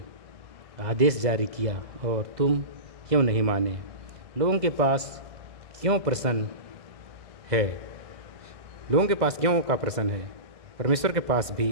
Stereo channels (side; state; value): left; late; 2.1 ms